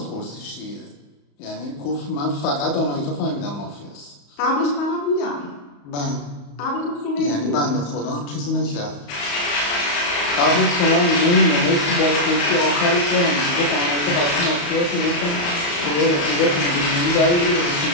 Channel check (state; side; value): late; right; 34 ms